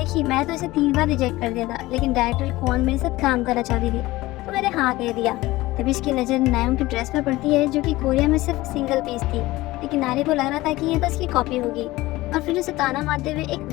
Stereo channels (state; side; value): quieter; right; 18.6 dB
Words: मैं तो इसे 3 बार रिजेक्ट कर दिया था, लेकिन डायरेक्टर कौन मेरे साथ काम करना चाहती थी, तो मैंने हाँ कह दिया। तभी इसकी नजर नायम की ड्रेस पर पड़ती है, जो कि कोरिया में सिर्फ सिंगल पीस थी, लेकिन नारी को लग रहा था कि ये तो इसकी कॉपी होगी, और फिर उसे ताना मारते हुए एक